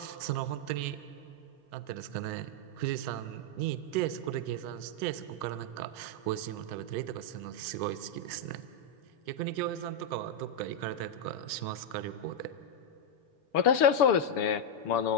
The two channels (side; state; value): right; late; 7.0 ms